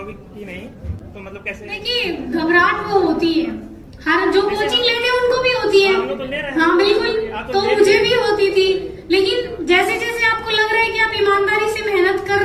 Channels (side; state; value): both; identical; correlation 1.00